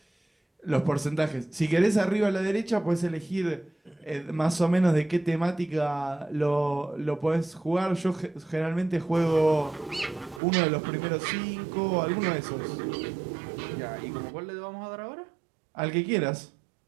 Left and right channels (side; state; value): left; drops out; at 10.4 s